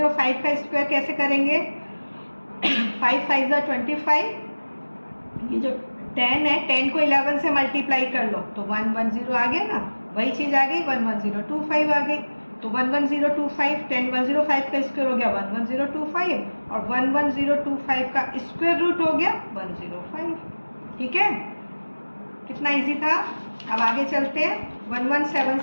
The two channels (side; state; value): both; inverted; correlation -1.00